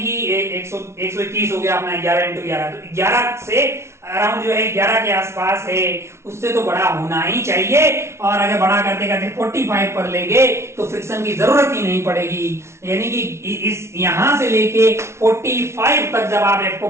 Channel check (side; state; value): left; late; 0.13 ms